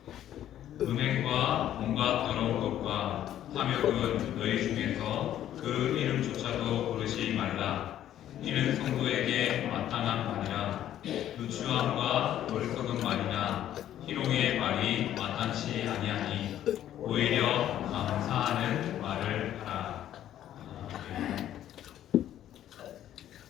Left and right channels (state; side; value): quieter; right; 11.7 dB